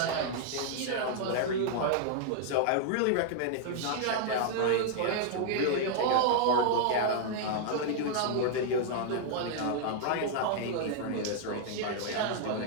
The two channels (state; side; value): different; both; correlation -0.01